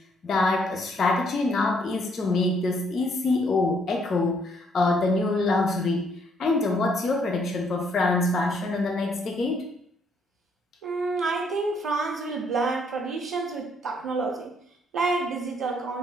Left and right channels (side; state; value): both; normal; correlation 0.69